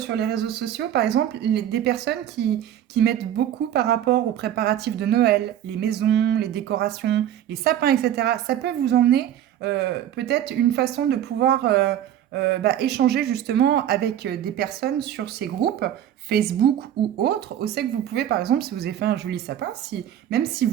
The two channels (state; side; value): quieter; left; 11.0 dB